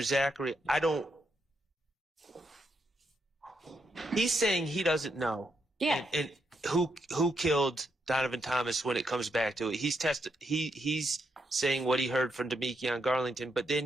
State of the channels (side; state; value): both; normal; correlation 0.80